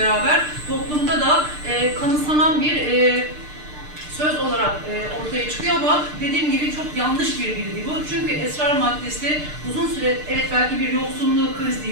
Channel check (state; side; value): late; left; 6.7 ms